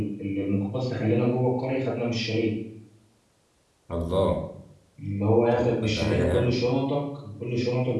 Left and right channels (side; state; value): both; identical; correlation 1.00